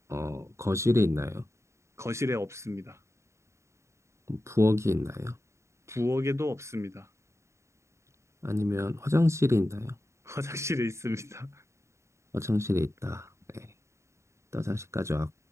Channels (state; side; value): late; left; 0.14 ms